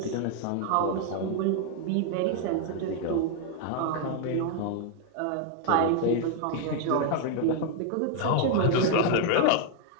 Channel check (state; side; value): different; both; correlation 0.00